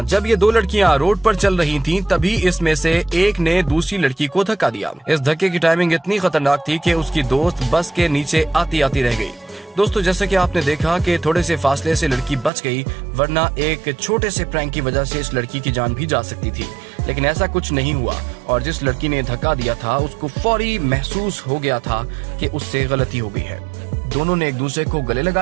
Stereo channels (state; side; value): drops out; left; at 12.5 s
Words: जब ये दो लड़कियां रोड पर चल रही थीं, तभी इसमें से एक ने दूसरी लड़की को धक्का दिया। इस धक्के की टाइमिंग इतनी खतरनाक थी कि उसकी दोस्त बस के नीचे आती आती रह गई। दोस्तों, जैसे कि आपने देखा कि थोड़े से फासले से लड़की बच गई, वरना एक छोटे से प्रैंक की वजह से इस लड़की की जान भी जा सकती थी, लेकिन ऐसा कुछ नहीं हुआ और जिस लड़की ने धक्का दिया था उसको फौरी महसूस हो गया था कि उससे गलती हो गई है। दोनों ने एक दूसरे को गले